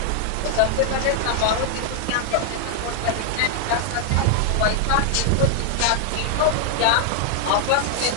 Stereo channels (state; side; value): different; both; correlation 0.00